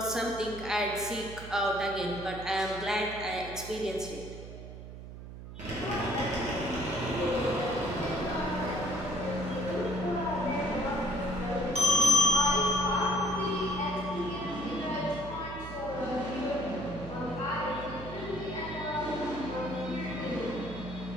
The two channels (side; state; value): right; noise; hum, 12 dB below the sound